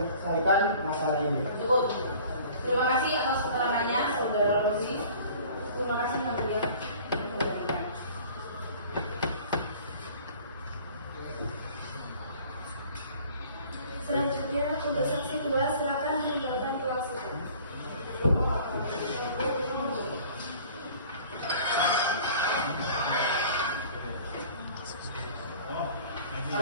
masalah ini. Cukup. Terima kasih atas keterangannya, Saudara Rosi. Terima kasih Yang Mulia. Selanjutnya untuk saksi 2 silakan meninggalkan kelas sidang.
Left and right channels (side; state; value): both; inverted; correlation -0.48